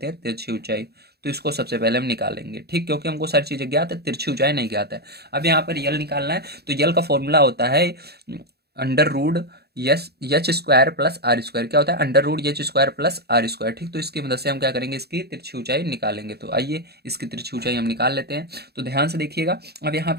हैं, तिरछी ऊंचाई। तो इसको सबसे पहले हम निकालेंगे, ठीक, क्योंकि हमको सारी चीजें ज्ञात है, तिरछी ऊंचाई नहीं ज्ञात है। अब यहाँ पर यल निकालना है, तो यल का फॉर्मूला होता है under root H square plus R square क्या होता है, under root H square plus R square. ठीक, तो इसकी मदद से हम क्या करेंगे, इसकी तिरछी ऊंचाई निकालेंगे। तो आइए इसकी तिरछी ऊंचाई हम निकाल लेते हैं। तो ध्यान से देखिएगा, अब यहाँ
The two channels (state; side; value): late; left; 0.47 ms